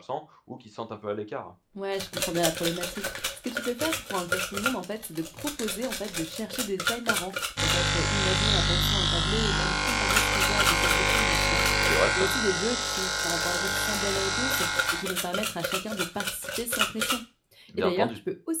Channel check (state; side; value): identical; both; correlation 1.00